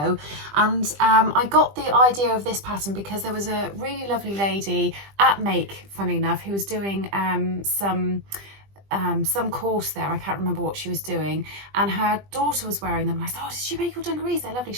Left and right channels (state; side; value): late; left; 20 ms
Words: and I got the idea of this pattern because there was a really lovely lady at Make, funny enough, who was doing some course there. I can't remember what she was doing, and her daughter was wearing them, and I said, oh, did you make your dungarees? They're lovely.